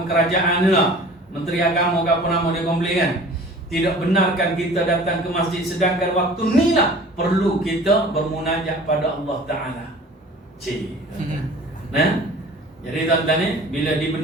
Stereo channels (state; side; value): normal; both; correlation 0.45